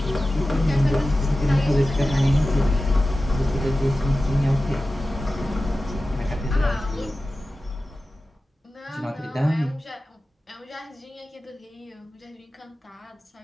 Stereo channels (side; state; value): both; normal; correlation 0.95